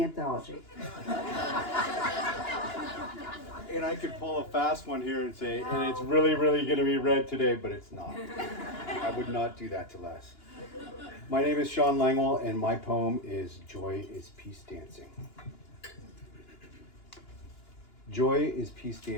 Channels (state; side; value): late; right; 2.9 ms